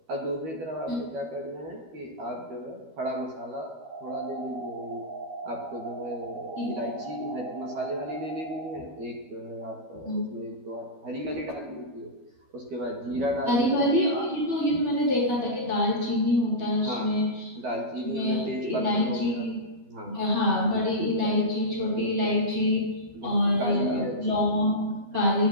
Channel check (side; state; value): left; late; 13 ms